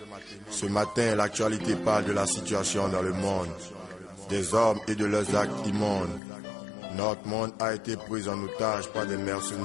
Ce matin, l'actualité parle de la situation dans le monde, des hommes et de leurs actes immondes. Notre monde a été pris en otage par des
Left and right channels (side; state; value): right; drops out; at 6.2 s